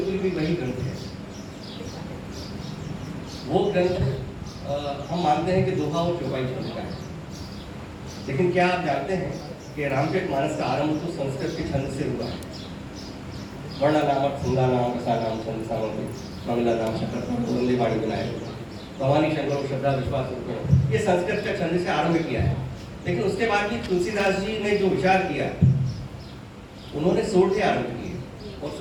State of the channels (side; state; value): both; identical; correlation 1.00